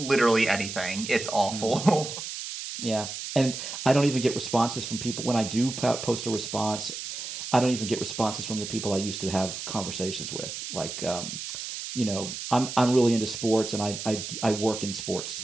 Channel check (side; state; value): right; noise; hiss, 7 dB below the sound